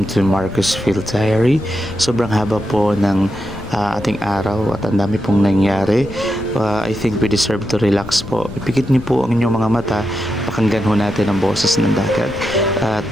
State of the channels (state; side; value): noise; left; rumble, 14 dB below the sound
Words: to Marcus Field Diary. Sobrang haba po ng ating araw at ang dami pong nangyari. I think we deserve to relax po. Ipikit niyo po ang inyong mga mata, pakinggan ho natin ang boses ng dagat at